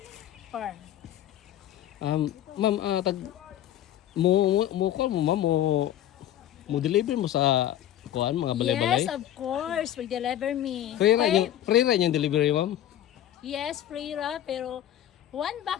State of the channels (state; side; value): quieter; right; 12.1 dB